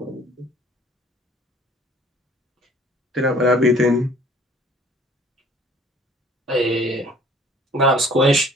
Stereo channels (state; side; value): normal; both; correlation 0.53